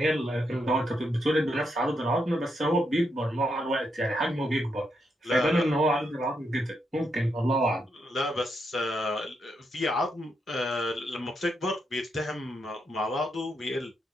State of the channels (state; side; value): normal; both; correlation 0.81